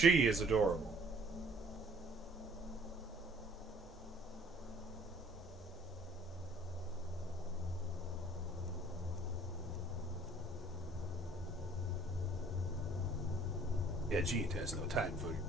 is adorable. Yeah, Jean has no time for your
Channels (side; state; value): both; normal; correlation 0.56